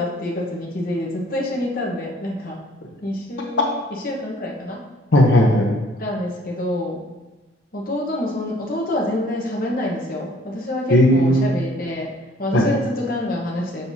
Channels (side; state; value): both; normal; correlation 0.58